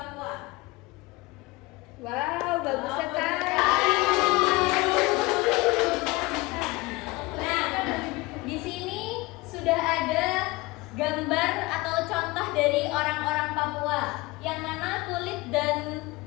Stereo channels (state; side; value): quieter; right; 22.4 dB